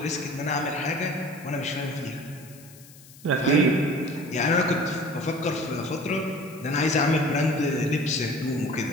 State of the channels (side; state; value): left; noise; hiss, 22 dB below the sound